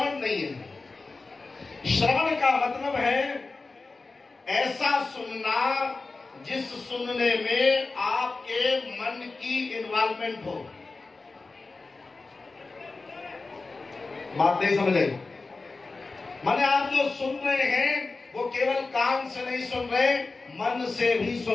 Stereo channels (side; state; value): right; quieter; 3.7 dB